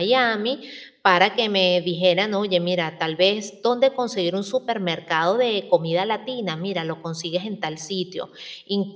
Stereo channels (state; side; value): identical; both; correlation 1.00